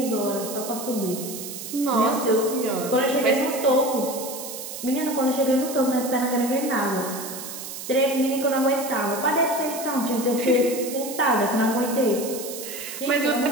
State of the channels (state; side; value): noise; right; hiss, 9 dB below the sound